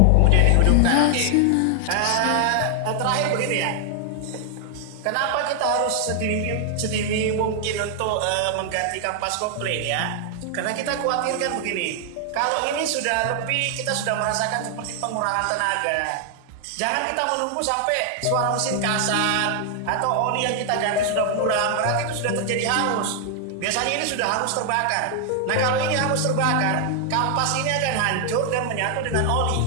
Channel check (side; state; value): both; different; correlation 0.00